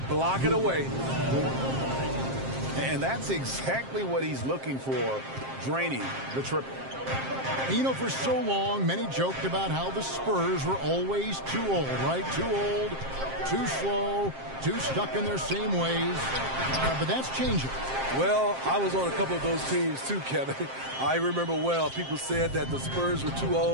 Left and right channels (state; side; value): late; left; 7.5 ms